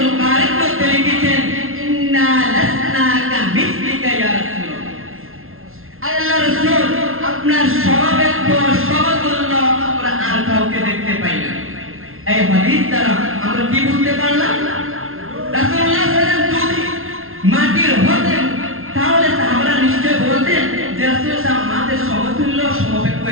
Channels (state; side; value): late; left; 0.62 ms